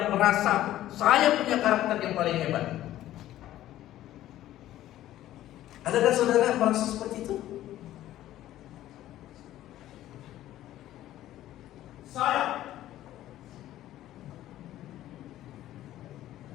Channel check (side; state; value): right; quieter; 13.7 dB